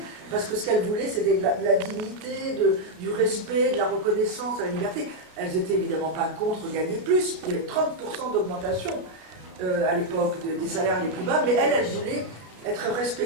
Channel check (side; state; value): left; late; 33 ms